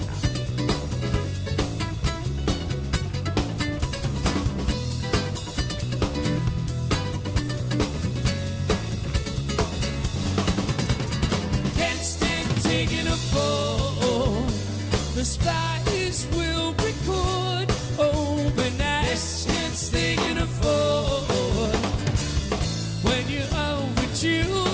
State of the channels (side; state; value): both; identical; correlation 1.00